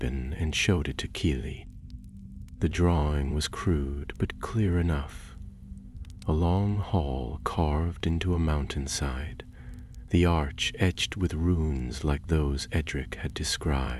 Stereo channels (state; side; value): identical; both; correlation 1.00